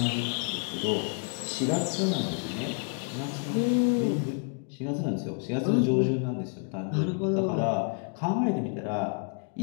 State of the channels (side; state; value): right; quieter; 39.1 dB